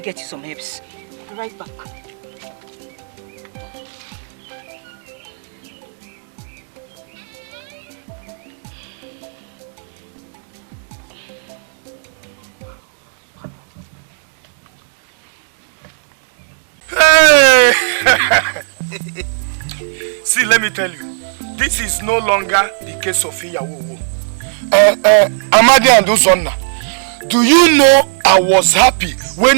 get you some herbs. I'll be right back. See, let me tell you, this is no longer the case of Iyawowo. Amadi and Uzonna, do you know I was happy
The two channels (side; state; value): left; silent; digital silence